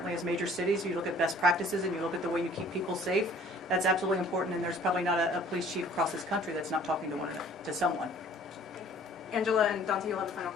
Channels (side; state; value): both; normal; correlation 0.53